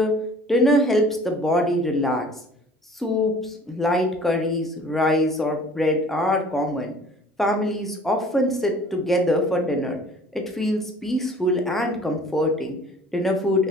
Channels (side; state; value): both; normal; correlation 0.50